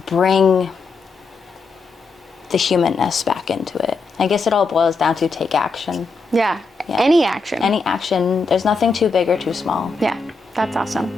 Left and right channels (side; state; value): right; quieter; 4.1 dB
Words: bring the humanness back into it. I guess it all boils down to take action. Yeah. Any action. Any action. There's nothing too big or too small. Yeah, that's